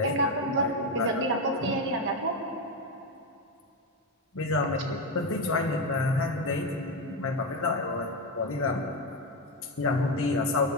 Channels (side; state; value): both; normal; correlation 0.11